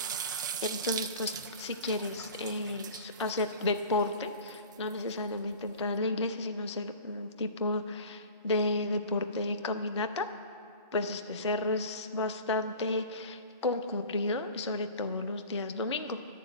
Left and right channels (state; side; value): inverted; both; correlation -0.40